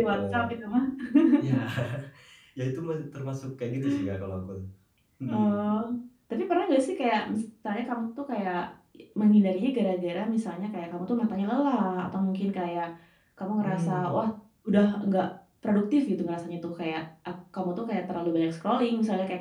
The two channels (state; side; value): identical; both; correlation 1.00